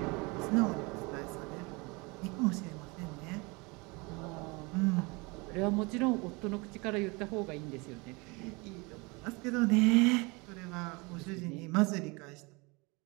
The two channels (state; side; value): quieter; left; 27.1 dB